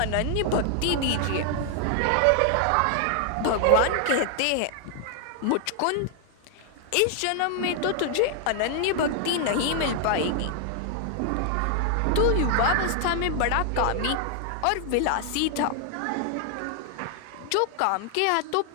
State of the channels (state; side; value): different; both; correlation 0.00